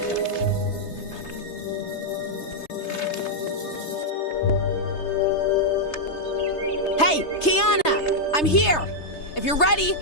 Hey, Kiana! I'm here! If you're ready,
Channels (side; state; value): right; late; 3.3 ms